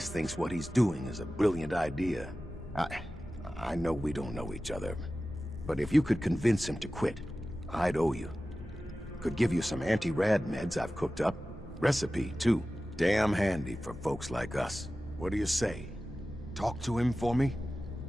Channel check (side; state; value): both; normal; correlation 0.95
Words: thinks what he's doing is a brilliant idea. I know we don't know each other, but if you could convince him to quit, I'd owe you. Could give you some anti-rad meds I've cooked up. Recipe, too. Damn handy for folks like us. What do you say? Talk to him for me?